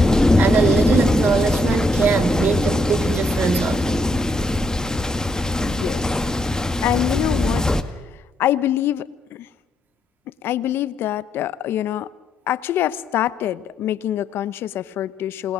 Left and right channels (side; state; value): both; normal; correlation 0.75